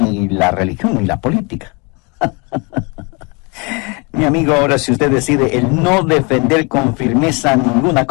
la religión ni la política. Mi amigo, ahora si usted decide el no defender con firmeza ninguna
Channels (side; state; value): right; quieter; 30.6 dB